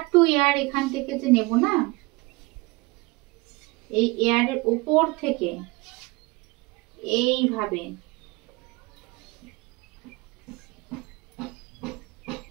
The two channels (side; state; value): left; quieter; 24.2 dB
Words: টু এয়ার এখান থেকে যে নেব না, এই এয়ারের উপর থেকে এইভাবে